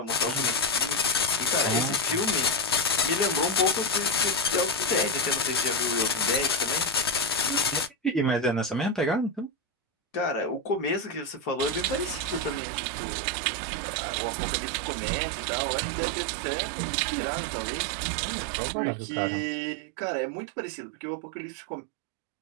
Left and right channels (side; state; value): left; drops out; at 12.6 s